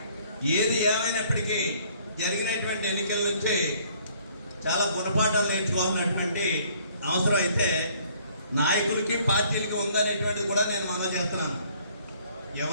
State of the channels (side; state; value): both; inverted; correlation -0.60